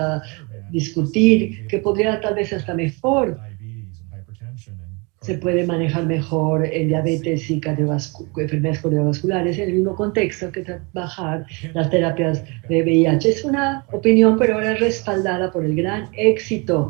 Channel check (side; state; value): left; quieter; 29.7 dB